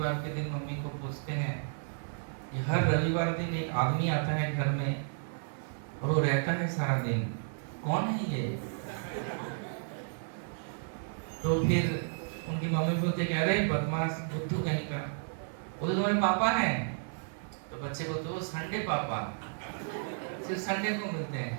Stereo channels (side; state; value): left; silent; digital silence